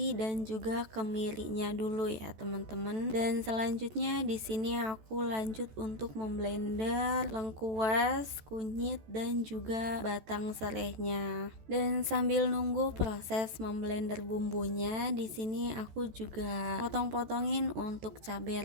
dan juga kemirinya dulu ya teman-teman. Dan selanjutnya di sini aku lanjut untuk memblender lengkuas, kunyit dan juga batang serehnya. Dan sambil nunggu proses memblender bumbunya, di sini aku juga potong-potongin untuk cabai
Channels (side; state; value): left; late; 14 ms